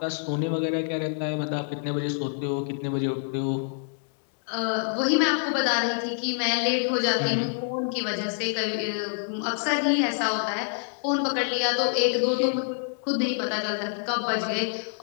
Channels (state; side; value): silent; right; digital silence